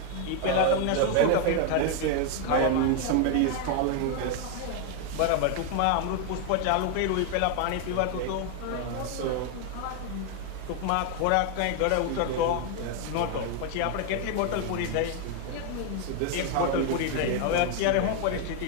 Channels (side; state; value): both; different; correlation 0.00